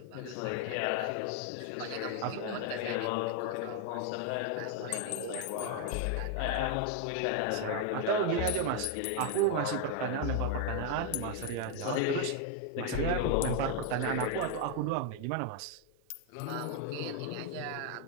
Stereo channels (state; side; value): different; both; correlation 0.01